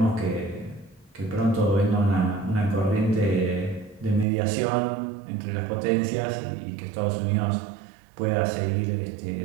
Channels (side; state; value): left; drops out; at 4.2 s